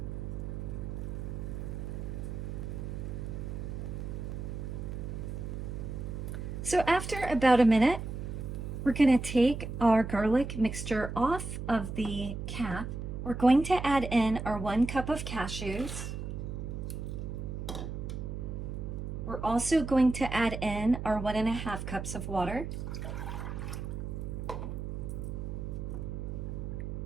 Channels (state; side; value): noise; right; hum, 5 dB below the sound